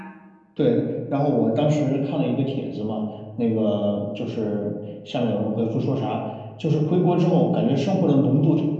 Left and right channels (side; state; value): both; identical; correlation 1.00